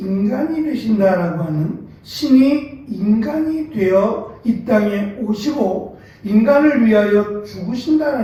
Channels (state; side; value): identical; both; correlation 1.00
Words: 되신다라고 하는 신이 인간이 되어 이 땅에 오시고 인간을 위하여